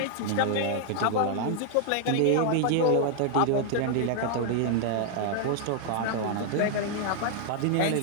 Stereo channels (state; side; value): different; both; correlation 0.00